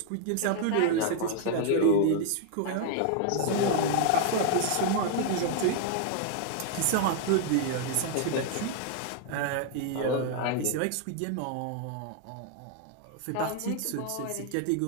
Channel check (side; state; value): both; different; correlation 0.00